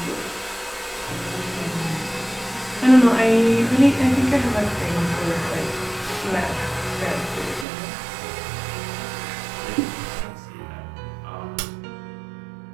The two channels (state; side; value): drops out; left; at 7.7 s